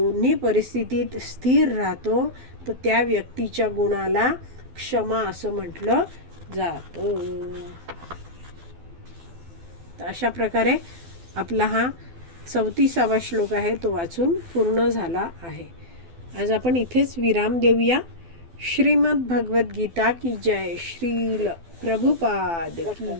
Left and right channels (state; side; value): late; left; 12 ms